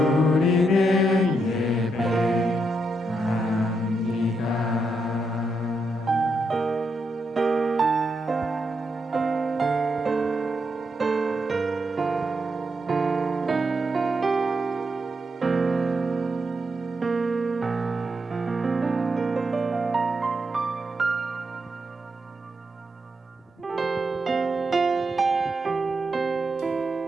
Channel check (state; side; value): normal; both; correlation 0.82